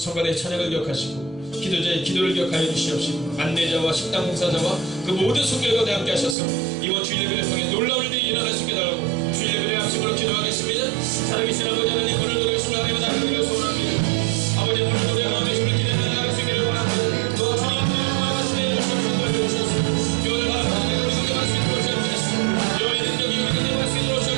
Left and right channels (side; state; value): left; drops out; at 6.4 s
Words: 찬양을 기억하시고 기도자의 기도를 기억하여 주시옵시고 안내자와 식당 봉사자와 그 모든 손길 가운데 함께 하셔서 이번 주일 예배를 통해 놀라운 일이 일어날 수 있게 달라고 주일 예배를 양심으로 기도하겠습니다. 살아계신 아버지 하나님, 오늘 노래했습니다. 하나님의 나라를 소원합니다. 아버지 오늘 노래 하나님의 힘을 기대는 나갈 수 있기를 원합니다. 또 주님의 말씀에 주셔서 돌려주셔서 교회를 바라보는 우리 속에 말씀이 들어오시옵소서. 여호와의 능력이 우리 속에 말씀이